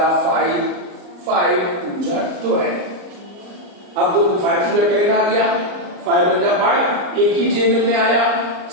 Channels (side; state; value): left; late; 34 ms